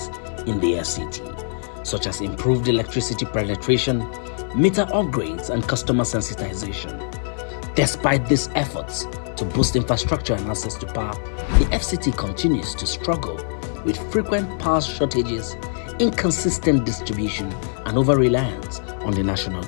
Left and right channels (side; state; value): right; silent; 64 dB below the other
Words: in the FCT, such as improved electricity penetration, meter upgrades, and customer sensitization. Despite these efforts to boost infrastructure and access to power, the FCT continues to struggle with frequent power shortages, inconsistent distribution, and over-reliance on the national